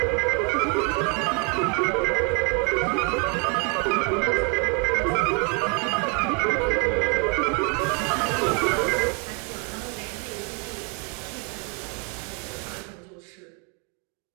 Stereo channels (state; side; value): quieter; left; 32.8 dB